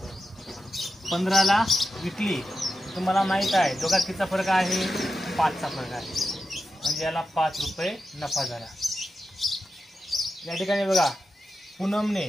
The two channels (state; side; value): normal; both; correlation 0.89